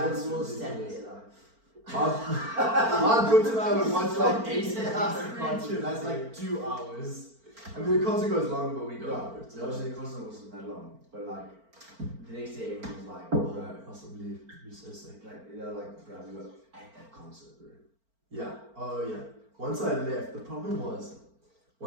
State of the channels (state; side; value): late; left; 4.4 ms